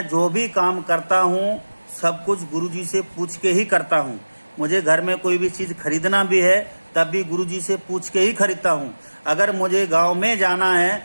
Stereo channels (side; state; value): both; inverted; correlation -1.00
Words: जो भी काम करता हूँ सब कुछ गुरुजी से पूछ के ही करता हूँ। मुझे घर में कोई भी चीज़ खरीदना भी है तब भी गुरुजी से पूछ के ही खरीदता हूँ। अगर मुझे गांव में जाना है